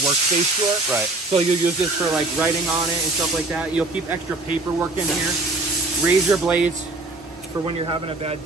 workspace drawer. Right. So you'll use this for like writing on it and stuff like that. You'll keep extra paperwork in here, razor blades for when you're having a bad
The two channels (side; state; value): left; quieter; 3.1 dB